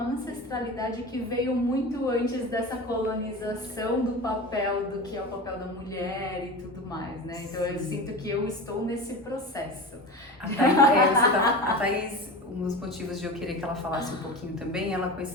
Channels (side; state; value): both; normal; correlation 0.29